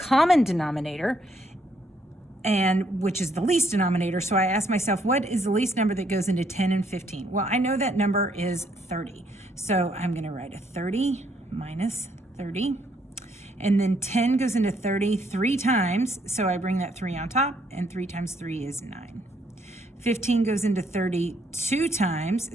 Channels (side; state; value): both; normal; correlation 0.70